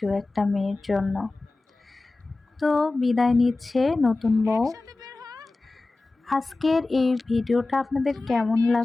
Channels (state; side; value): quieter; right; 3.3 dB